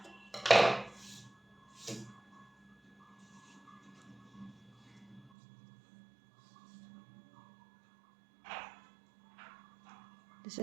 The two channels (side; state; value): left; drops out; at 5.3 s